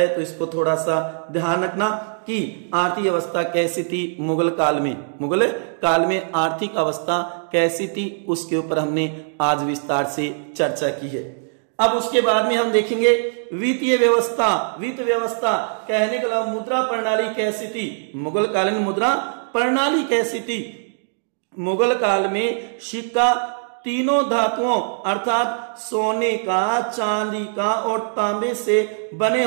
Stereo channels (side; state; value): left; silent; digital silence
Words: तो इसको थोड़ा सा ध्यान रखना कि आर्थिक अवस्था कैसी थी मुगल काल में आर्थिक अवस्था कैसी थी, उसके ऊपर हमने आज विस्तार से चर्चा की है। अब उसके बाद में हम देखेंगे वित्तीय व्यवस्था कहने का मुद्रा प्रणाली कैसी थी, मुगल काल में मुद्रा प्रणाली कैसी थी। मुगल काल में सिक्का तीनों धातुओं अर्थात सोने का, चांदी का और तांबे से बने